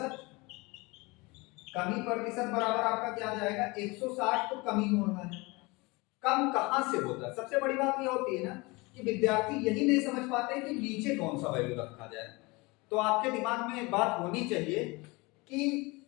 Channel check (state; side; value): quieter; right; 24.9 dB